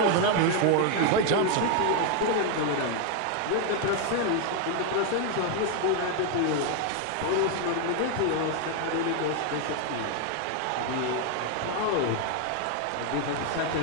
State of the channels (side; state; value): both; different; correlation 0.01